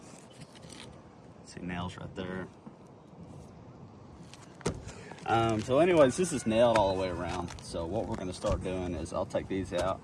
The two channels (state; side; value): identical; both; correlation 1.00